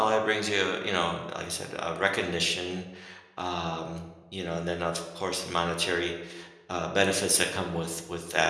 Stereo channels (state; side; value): identical; both; correlation 1.00